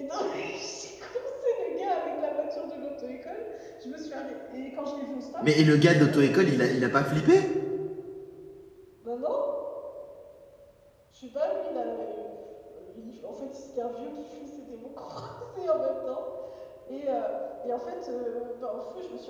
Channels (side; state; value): both; identical; correlation 1.00